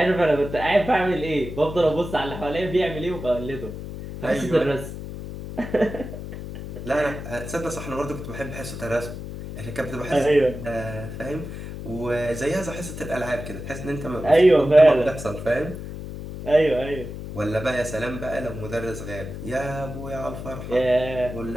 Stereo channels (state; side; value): noise; left; hum, 9 dB below the sound